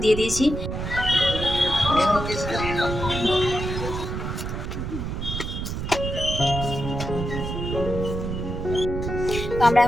দিয়ে দিয়েছি। তো আমরা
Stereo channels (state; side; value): noise; right; rumble, 4 dB below the sound